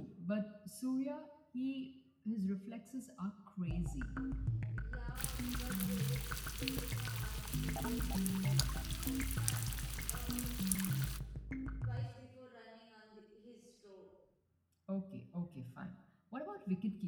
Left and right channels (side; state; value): both; identical; correlation 1.00